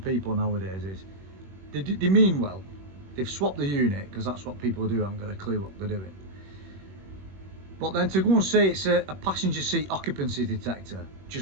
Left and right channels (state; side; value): late; left; 21 ms